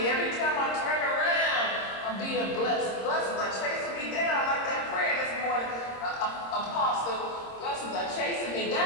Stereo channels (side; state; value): right; late; 26 ms